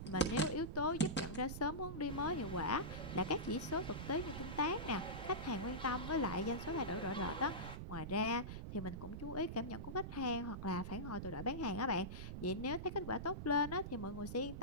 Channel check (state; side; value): noise; right; rumble, 7 dB below the sound